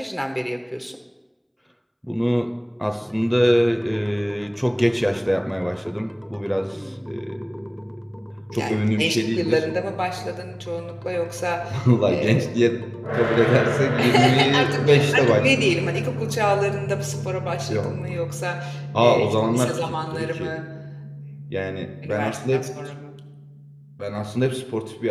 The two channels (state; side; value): identical; both; correlation 1.00